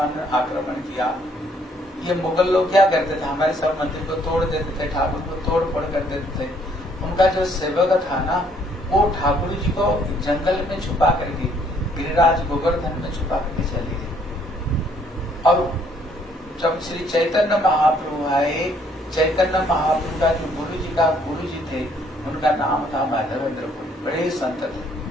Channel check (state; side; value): normal; both; correlation 0.65